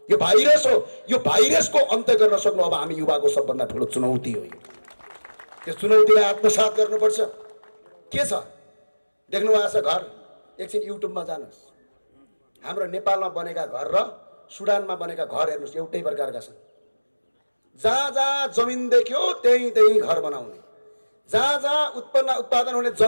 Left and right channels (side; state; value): both; inverted; correlation -1.00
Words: यो भाइरस हो, यो भाइरसको अन्त गर्न सक्नु अब हामी युवाको सबभन्दा ठुलो चुनौती हो। यो चुनौतीलाई आत्मसात गर्नुपर्छ। के छ देख्नु भएको छ घर? एकछिन युट्युबमा जानुहोस्, हाम्रो नेपालमा बनेका घर र सुडानमा बनेका घर हेर्नुहोस्, एउटै प्रकारका छन्। जहाँ जहाँ जमिन देख्यो त्यहीँ त्यहीँ घर बनाउने, जहाँ जहाँ उत्पादन हुने